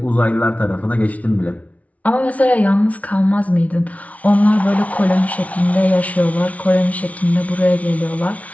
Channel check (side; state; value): right; late; 0.068 ms